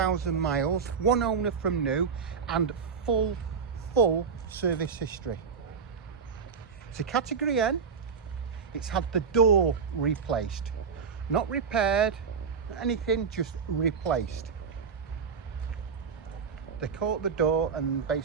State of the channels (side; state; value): left; quieter; 5.9 dB